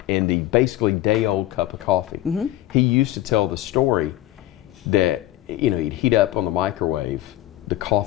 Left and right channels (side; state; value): right; quieter; 14.6 dB